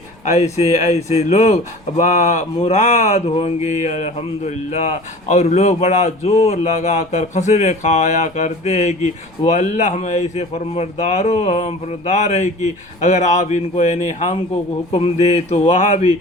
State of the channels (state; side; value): noise; left; rumble, 27 dB below the sound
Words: ایسے لوگ مراد ہوں گے الحمدللہ۔ اور لوگ بڑا زور لگا کر قسمیں کھایا کرتے ہیں کہ وہ اللہ میں ایسے فرماندار ہے کہ اگر آپ ان کو یعنی ہم کو حکم دے تو وہاں بھی